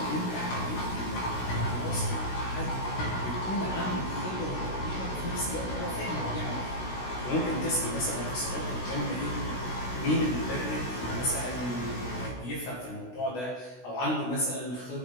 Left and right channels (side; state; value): right; late; 16 ms